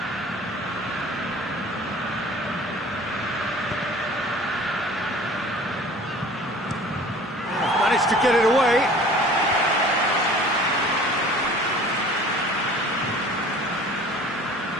Managed to get it away.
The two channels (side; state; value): both; normal; correlation 0.46